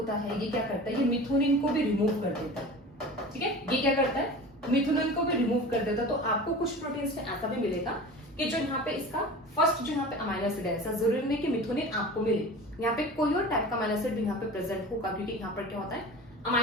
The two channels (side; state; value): both; normal; correlation 0.36